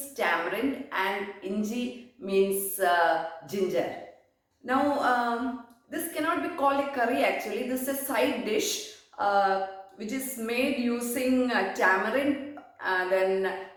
tamarind and Inji means ginger. Now, this cannot be called a curry actually. This is a side dish which is made using tamarind, then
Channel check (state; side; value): identical; both; correlation 1.00